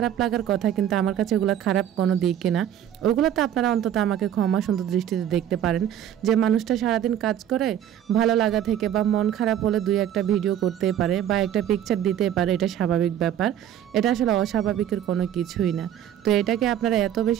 লাগার কথা, কিন্তু আমার কাছে ওগুলো খারাপ কোনো দিকই না। ওগুলো তো আপনারা অন্তত আমাকে ক্ষমা সুন্দর দৃষ্টিতে দেখতে পারেন, যে মানুষটা সারাদিন কাজ করে, ভালো লাগা থেকে বা মন খারাপ হলে দুই একটা ভিডিও করতেই পারে বা একটা পিকচার দিতেই পারে, এটা স্বাভাবিক ব্যাপার। এটা আসলে অস্বাভাবিকের কোনো কিছুই না। তো এটাকে আপনারা এত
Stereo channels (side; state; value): left; quieter; 10.6 dB